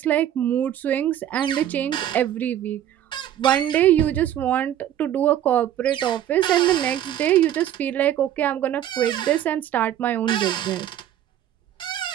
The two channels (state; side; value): quieter; left; 11.3 dB